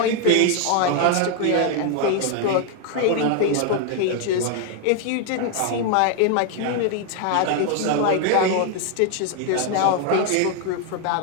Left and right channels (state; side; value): different; both; correlation 0.01